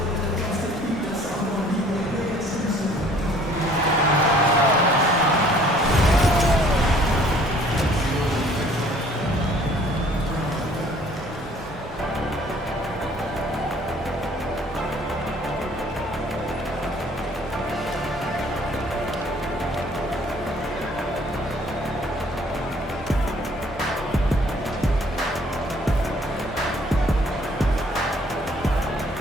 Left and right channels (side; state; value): both; normal; correlation 0.57